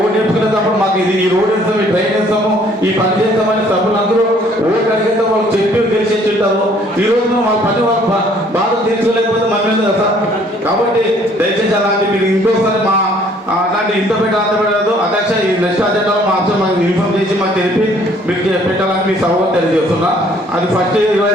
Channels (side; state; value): both; normal; correlation 0.60